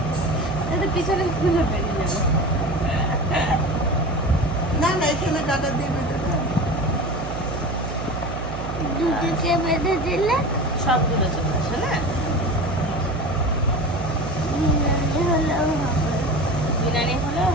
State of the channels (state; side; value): noise; right; hum, 7 dB below the sound